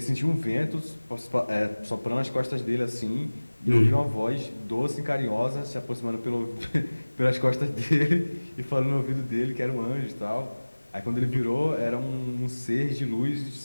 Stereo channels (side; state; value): both; inverted; correlation -1.00